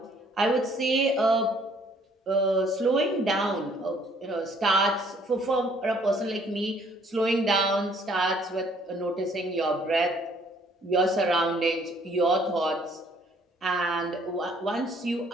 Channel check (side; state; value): both; normal; correlation 0.62